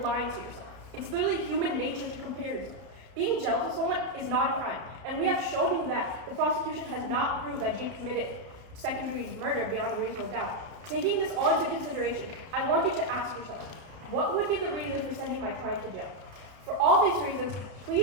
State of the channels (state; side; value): late; left; 32 ms